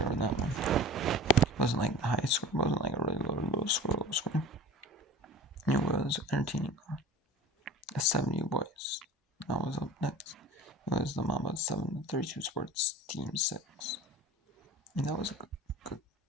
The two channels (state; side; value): normal; both; correlation 0.37